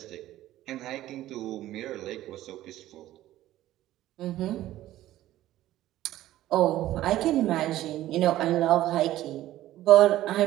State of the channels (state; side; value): quieter; left; 14.5 dB